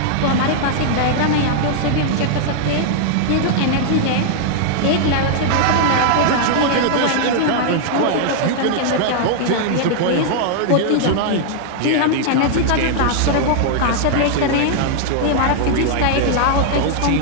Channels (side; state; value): both; different; correlation -0.01